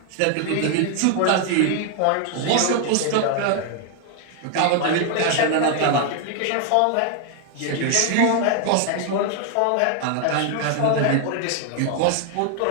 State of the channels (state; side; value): different; both; correlation 0.00